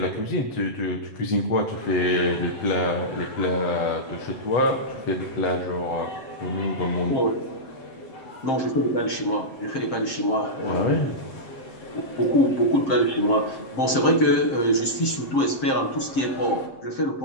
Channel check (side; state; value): right; late; 7.6 ms